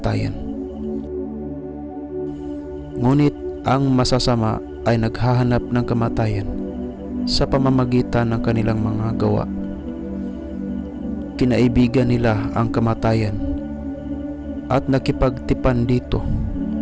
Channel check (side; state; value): both; identical; correlation 1.00